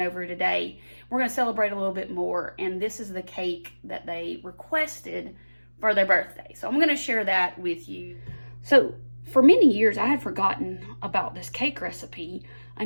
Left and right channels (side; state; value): both; inverted; correlation -1.00